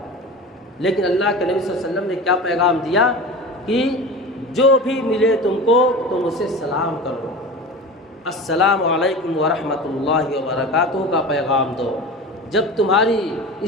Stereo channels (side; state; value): both; normal; correlation 0.32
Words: لیکن اللہ کے نبی صلی اللہ علیہ وسلم نے کیا پیغام دیا کہ جو بھی ملے تم کو تم اسے سلام کرو، السلام علیکم ورحمۃ اللہ وبرکاتہ کا پیغام دو۔ جب تمہاری